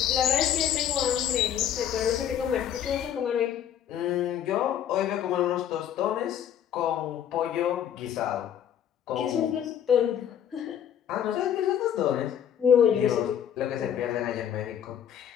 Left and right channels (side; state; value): right; quieter; 9.6 dB